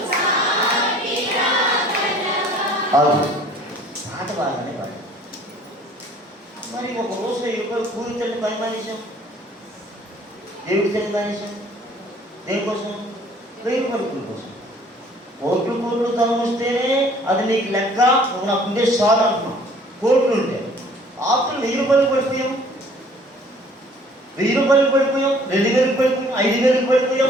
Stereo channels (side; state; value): both; normal; correlation 0.54